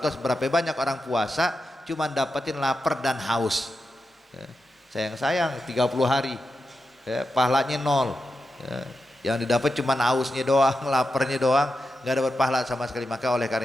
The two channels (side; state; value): both; normal; correlation 0.89